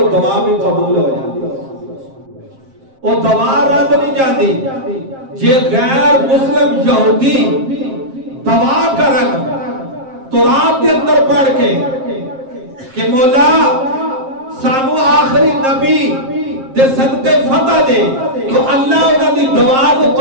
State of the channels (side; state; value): left; late; 7.5 ms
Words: دعا بھی قبول ہو جاتی، وہ دعا رد نہیں جاتی۔ جے غیر مسلم یہودی دعا کرن تراب دے اندر پڑھ کے کہ مولا سانو آخری نبی دے صدقے فتح دے، تو اللہ انہاں دی دعا کو